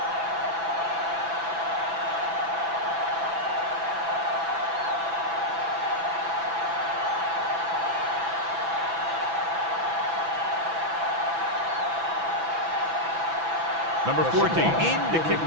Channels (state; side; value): late; left; 6.0 ms